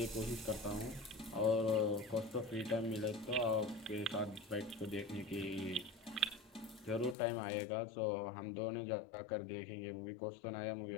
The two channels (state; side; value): drops out; right; at 7.2 s